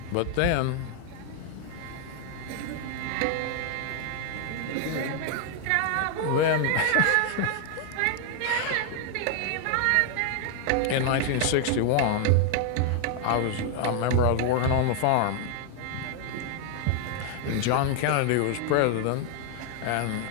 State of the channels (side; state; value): both; different; correlation 0.00